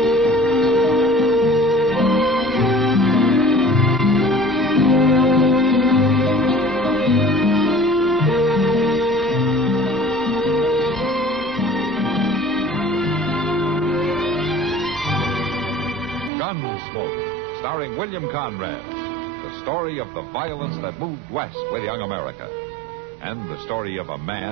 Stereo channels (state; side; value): drops out; left; at 16.3 s